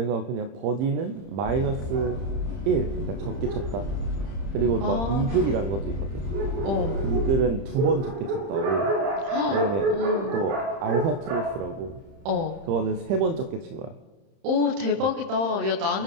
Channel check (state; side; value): late; left; 30 ms